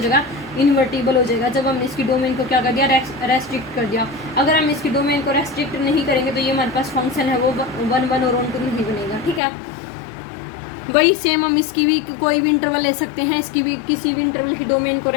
इन्वर्टिबल हो जाएगा, जब हमने इसकी डोमेन को क्या कर दिया, रेस्ट्रिक्ट कर दिया। अगर हम इसकी डोमेन को रेस्ट्रिक्ट नहीं करेंगे तो ये हमारे पास फंक्शन है वो 1 और ऑन 2 नहीं बनेगा, ठीक है। वही सेम हम इसकी भी कोई भी इंटरवल ले सकते हैं, इसकी भी किसी भी इंटरवल की डोमेन को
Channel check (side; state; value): right; drops out; at 9.4 s